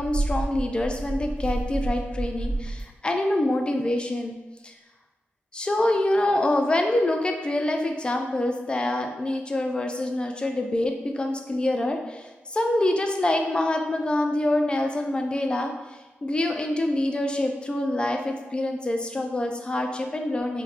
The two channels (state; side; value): normal; both; correlation 0.91